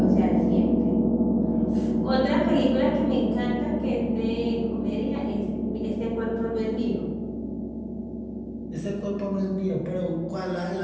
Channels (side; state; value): both; identical; correlation 1.00